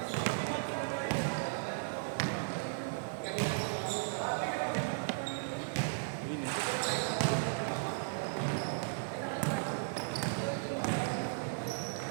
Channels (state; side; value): silent; left; digital silence